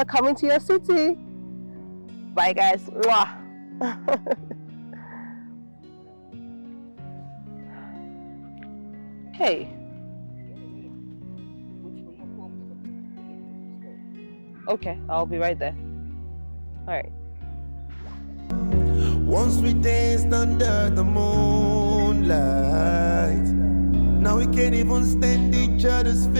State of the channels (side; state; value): both; inverted; correlation -1.00